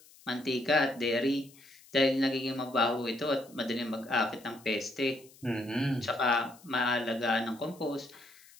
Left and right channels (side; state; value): left; noise; hiss, 25 dB below the sound